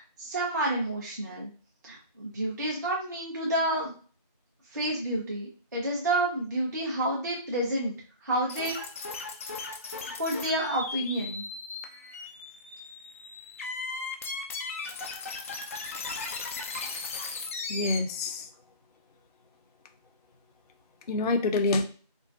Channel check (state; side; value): inverted; both; correlation -0.31